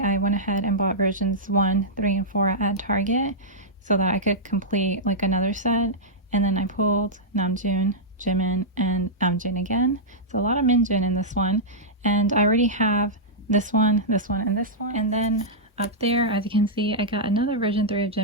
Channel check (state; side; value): normal; both; correlation -0.11